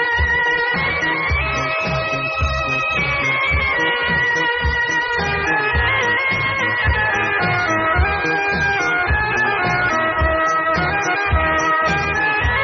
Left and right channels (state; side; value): identical; both; correlation 1.00